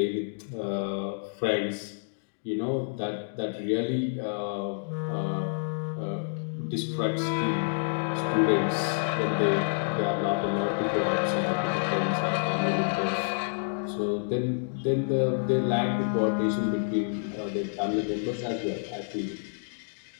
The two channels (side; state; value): right; silent; digital silence